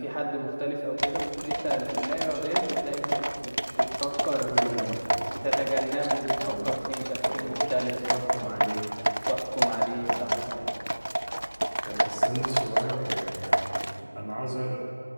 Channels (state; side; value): inverted; both; correlation -1.00